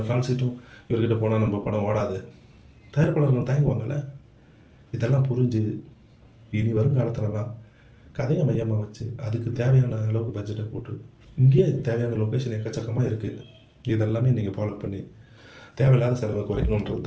கால் சீட்டும் இவர்கிட்ட போனால் நம்ம படம் ஓடாது, தயாரிப்பாளர்கள் தயங்குவாங்கள்ல. இதெல்லாம் புரிஞ்சு இனி வருங்காலத்துலலாம் கதையை மையமாக வச்சு அதுக்கு தேவையான அளவுக்கு பட்ஜெட்டை போட்டு, இங்கேயே தேவையான லொக்கேஷன் எக்கச்சக்கமாக இருக்குது, இதெல்லாமே நீங்கள் ஃபாலோ பண்ணி தேவையில்லாத செலவை குறைக்கணுன்றது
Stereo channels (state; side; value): identical; both; correlation 1.00